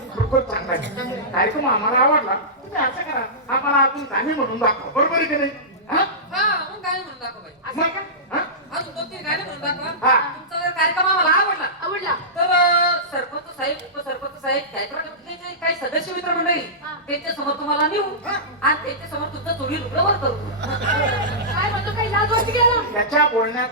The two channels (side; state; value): both; normal; correlation -0.18